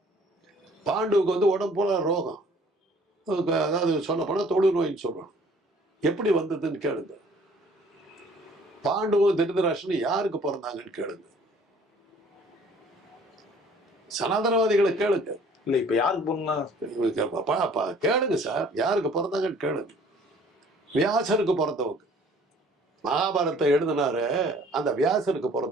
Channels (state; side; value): normal; both; correlation 0.55